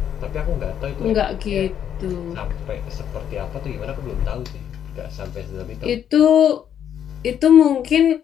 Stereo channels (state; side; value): quieter; right; 9.3 dB